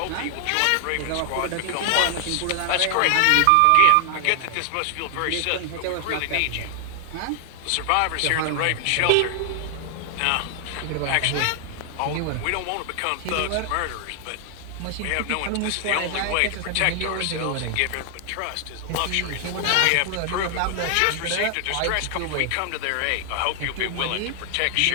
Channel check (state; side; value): different; both; correlation 0.00